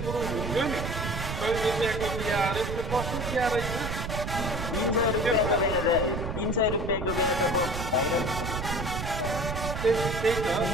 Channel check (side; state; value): right; noise; rumble, 4 dB below the sound